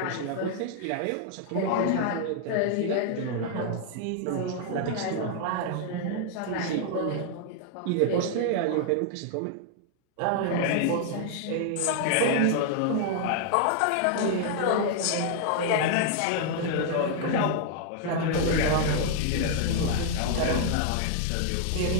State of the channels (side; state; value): both; different; correlation 0.00